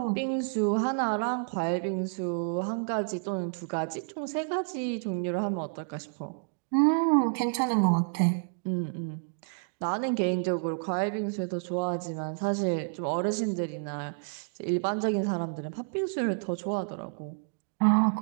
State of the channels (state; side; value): silent; left; digital silence